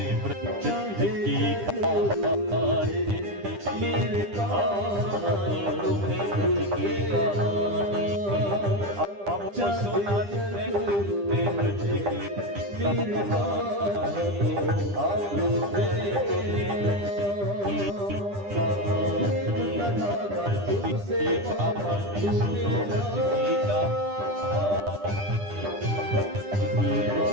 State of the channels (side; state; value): left; late; 10 ms